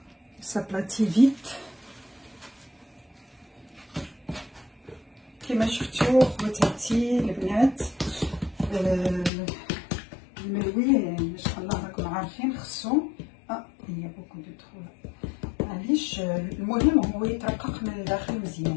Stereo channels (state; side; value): drops out; right; at 9.3 s